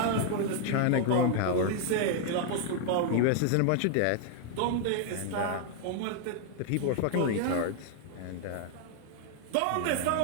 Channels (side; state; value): both; different; correlation 0.00